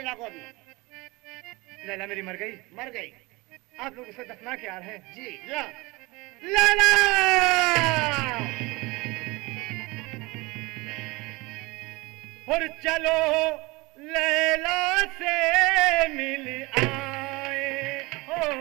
को अभी। लैला मेरी मर गई? मर गई। आप लोग उसे दफना के आ रहे हैं? जी। या लैला! और चलो लैला से मिल आए हो,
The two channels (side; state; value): left; quieter; 23.7 dB